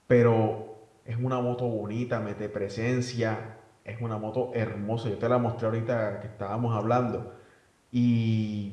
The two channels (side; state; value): both; identical; correlation 1.00